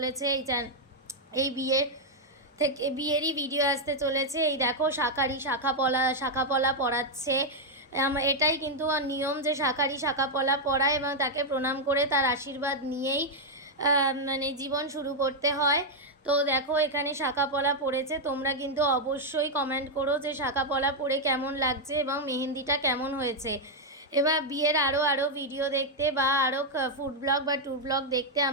এই বিয়েরই ভিডিও আসতে চলেছে। এই দেখো শাখা পলা পরাচ্ছে। এটাই কিন্তু নিয়ম যে শাখা পলা পরায় এবং তাকে প্রণাম করে তার আশীর্বাদ নিয়েই মানে জীবন শুরু করতে হয়। তো দেখো এখানে শাখা পলা পড়েছে। তোমরা কিন্তু অবশ্যই কমেন্ট করো যে শাখা পলা পরে কেমন লাগছে এবং মেহেন্দিটা কেমন হয়েছে। এবার বিয়ের আরও ভিডিও দেখতে বা আরও ফুড ব্লগ বা ট্যুর ব্লগ দেখতে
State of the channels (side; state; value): both; normal; correlation -0.01